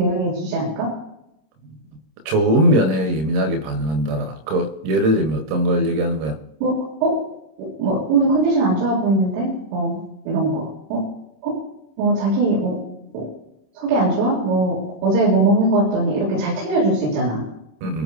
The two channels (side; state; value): left; late; 26 ms